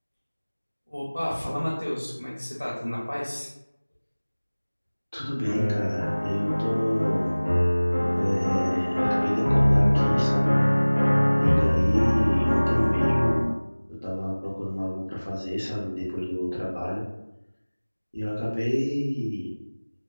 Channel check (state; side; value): inverted; both; correlation -1.00